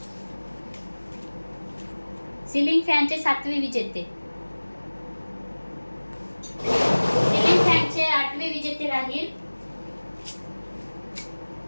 सिलिंग फॅनचे सातवे विजेते. सिलिंग फॅनचे आठवे विजेते राहील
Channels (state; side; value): inverted; both; correlation -1.00